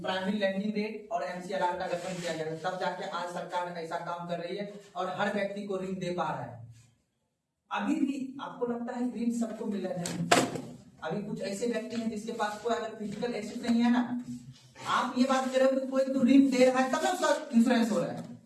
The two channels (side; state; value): both; identical; correlation 1.00